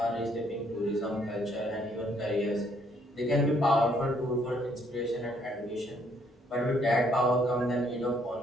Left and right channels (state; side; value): normal; both; correlation 0.68